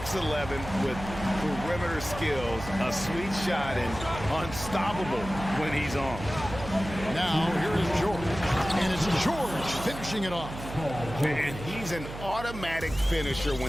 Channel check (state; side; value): noise; right; hum, 11 dB below the sound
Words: with perimeter skills, a sweet shot, and unstoppable when he's on. Now, here is George. And it's George finishing it off. And he's an automatic finisher